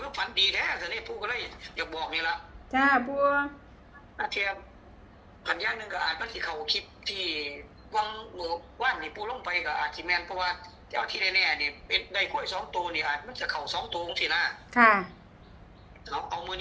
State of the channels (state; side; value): identical; both; correlation 1.00